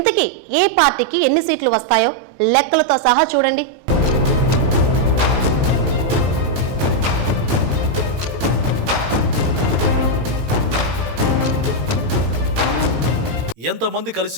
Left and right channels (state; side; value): late; left; 18 ms